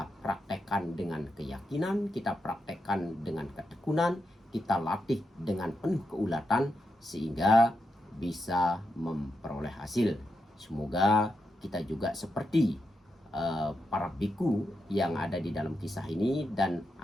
praktekkan dengan keyakinan, kita praktekkan dengan ketekunan, kita latih dengan penuh keulatan sehingga bisa memperoleh hasil. Semoga kita juga seperti para biku yang ada di dalam kisah ini, dan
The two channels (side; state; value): both; normal; correlation 0.85